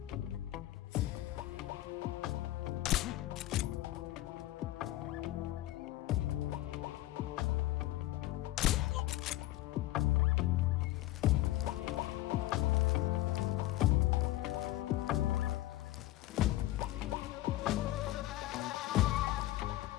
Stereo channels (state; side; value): quieter; right; 16.1 dB